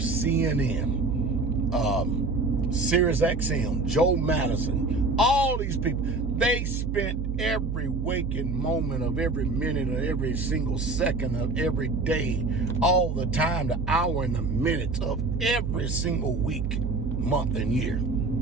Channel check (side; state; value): right; noise; hum, 2 dB below the sound